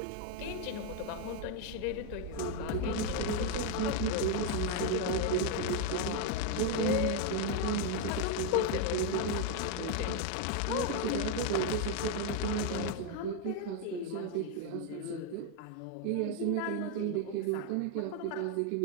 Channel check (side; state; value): both; different; correlation 0.01